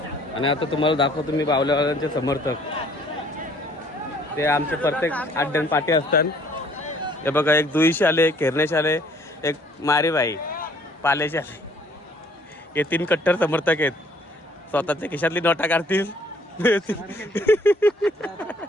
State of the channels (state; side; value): normal; both; correlation 0.59